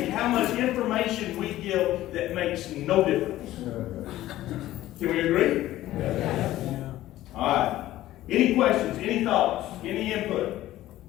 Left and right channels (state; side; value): quieter; right; 14.8 dB